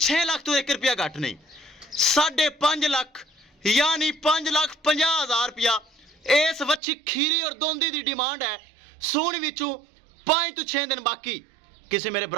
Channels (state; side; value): drops out; left; at 6.8 s